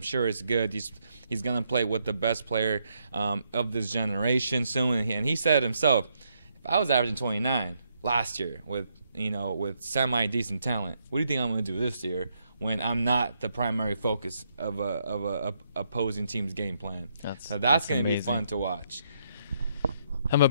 sure it's good. He's gonna play with the best player of this generation soon. And he said himself, if I was averaging 29 last year with semi-decent talent, what do you think I'm gonna do this year when I'm not the primary focus of a opposing team's game plan? So that's gonna be fun to watch. I'm a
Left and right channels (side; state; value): both; inverted; correlation -0.77